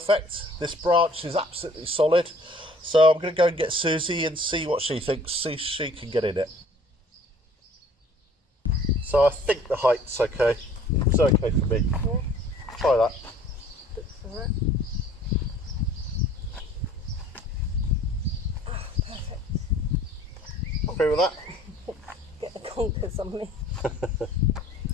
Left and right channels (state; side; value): normal; both; correlation 0.53